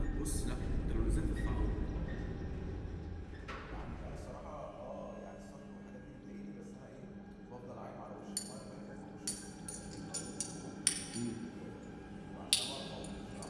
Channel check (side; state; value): both; identical; correlation 1.00